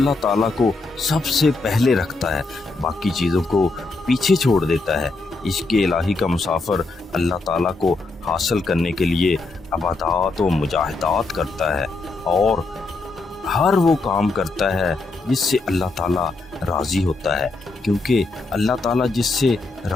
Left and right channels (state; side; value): quieter; right; 3.5 dB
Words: تعالیٰ کو سب سے پہلے رکھتا ہے، باقی چیزوں کو پیچھے چھوڑ دیتا ہے۔ عشق الہی کا مسافر اللہ تعالیٰ کو حاصل کرنے کے لیے عبادات و مجاہدات کرتا ہے اور ہر وہ کام کرتا ہے جس سے اللہ تعالیٰ راضی ہوتا ہے، کیونکہ اللہ تعالیٰ جس سے